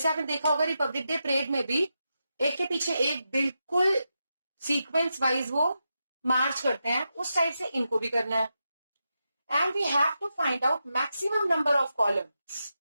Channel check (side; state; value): both; inverted; correlation -0.87